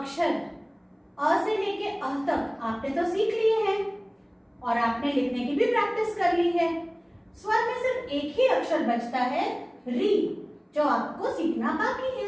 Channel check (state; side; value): identical; both; correlation 1.00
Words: अ से लेके अह तक आपने तो सीख लिए हैं और आपने लिखने की भी प्रैक्टिस कर ली है। स्वर में सिर्फ एक ही अक्षर बचता है री, जो आपको सीखना बाकी